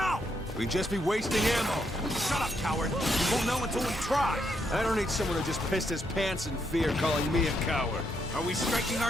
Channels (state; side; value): normal; both; correlation 0.78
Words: We'd just be wasting ammo. Shut up, coward. You won't know until we try. I don't need someone who just pissed his pants in fear calling me a coward. Are we striking